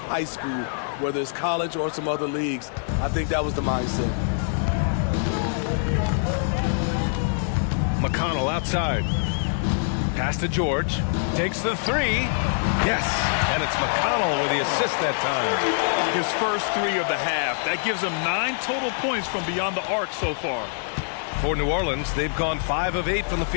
school, whether it's college or some other leagues. I think that was the mindset. McConnell outside. Pass to George. Takes the 3. Yes, and it's McConnell with the assist that time. His first 3 of the half. That gives him 9 total points from beyond the arc so far. For New Orleans, they've gone 5 of 8 from the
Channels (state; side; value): silent; right; digital silence